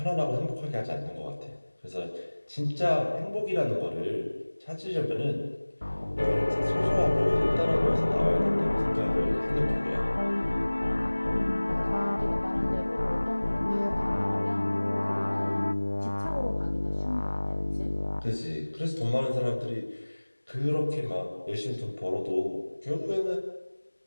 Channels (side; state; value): both; inverted; correlation -1.00